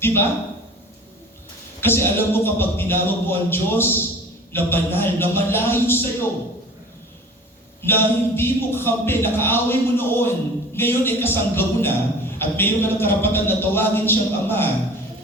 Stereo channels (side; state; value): both; normal; correlation 0.42